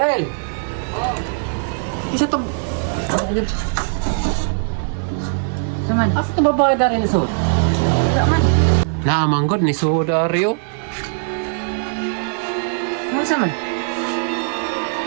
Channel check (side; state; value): left; silent; 60 dB below the other